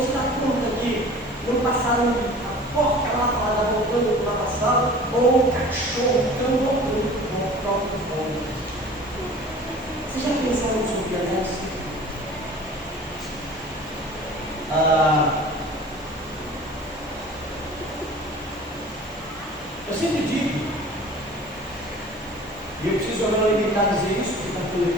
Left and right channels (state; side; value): noise; right; hiss, 27 dB below the sound